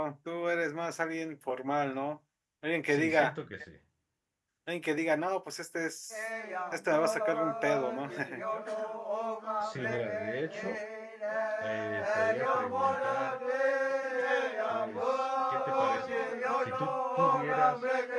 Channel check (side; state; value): both; identical; correlation 1.00